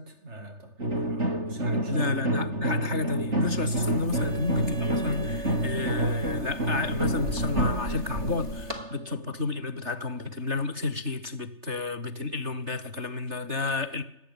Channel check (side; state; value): left; late; 3.3 ms